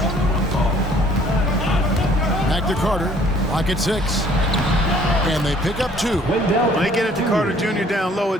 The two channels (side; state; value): both; normal; correlation 0.58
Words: Back to Carter. Lock at 6. And they pick up 2. When they get it to Carter Jr. down low,